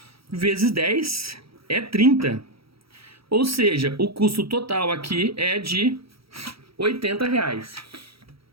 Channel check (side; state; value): left; late; 0.76 ms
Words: vezes 10 é 30. Ou seja, o custo total aqui é de R$ 80,00.